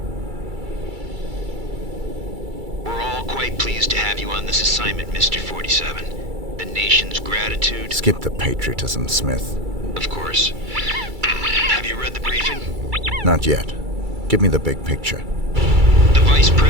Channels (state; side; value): late; left; 2.3 ms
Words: We're all quite pleased to have you on this assignment, Mr. 47. The nation's gratitude... Skip the patriotism, Smith. Of course. Have you read the briefing? Not yet. Give me the big picture. The Vice